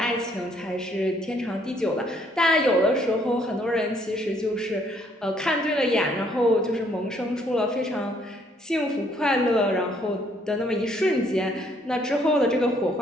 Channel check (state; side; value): normal; both; correlation 0.66